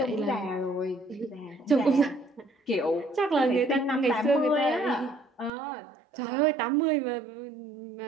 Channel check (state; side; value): drops out; left; at 5.5 s